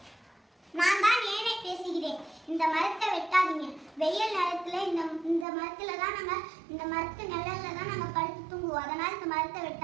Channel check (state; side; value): drops out; left; at 5.5 s